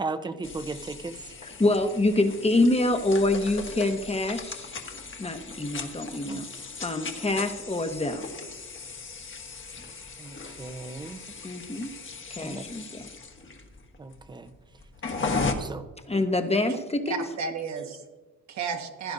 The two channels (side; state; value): both; normal; correlation 0.61